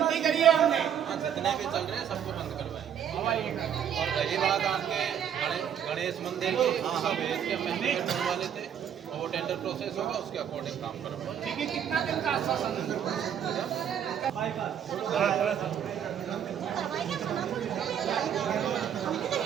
करी है हमने। जितने भी चल रहे हैं सबको बंद करवाएं। और रही बात आपके गणेश मंदिर की, सब भेज के हमें टेंडर वाले थे और वो टेंडर प्रोसेस होगा, उसके अकॉर्डिंग काम करेंगे। ठीक है, कितना दिन का आश्वासन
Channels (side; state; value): left; quieter; 9.0 dB